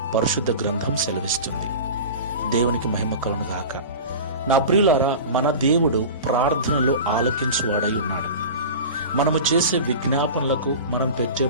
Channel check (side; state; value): both; inverted; correlation -0.32